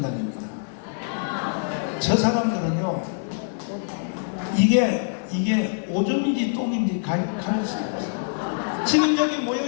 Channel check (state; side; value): silent; right; digital silence